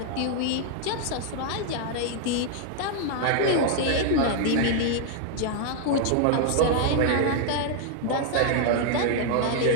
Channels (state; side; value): different; both; correlation 0.00